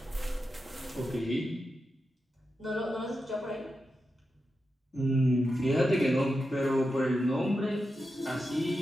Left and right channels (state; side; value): normal; both; correlation 0.89